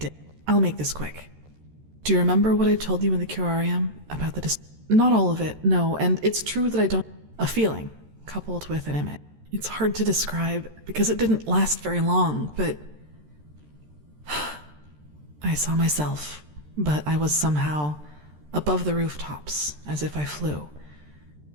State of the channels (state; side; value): late; left; 13 ms